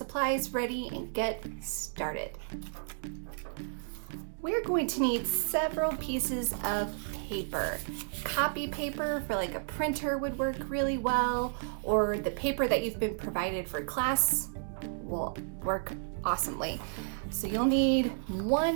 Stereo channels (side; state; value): left; silent; digital silence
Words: ready and get started. We're going to need several pieces of paper. Copy paper for like a printer would work really well, or the paper that you've been provided for class will work awesomely. So you'll need